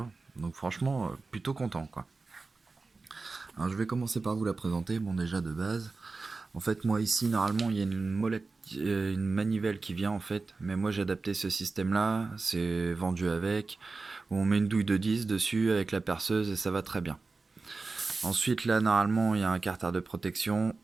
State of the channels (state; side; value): quieter; left; 3.9 dB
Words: Donc franchement, plutôt content quoi. Alors je vais commencer par vous la présenter. Bon, déjà de base, en fait moi ici normalement il y a une molette, une manivelle qui vient en fait, mais moi j'ai adapté ce système là, c'est vendu avec, où on met une douille de 10 dessus avec la perceuse et ça va très bien. Ensuite là normalement il y a un carter de protection,